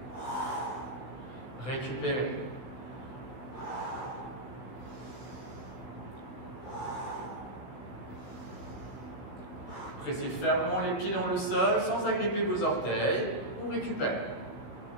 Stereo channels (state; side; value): late; right; 16 ms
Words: Récupérez. Pressez fermement les pieds dans le sol sans agripper vos orteils. On récupère.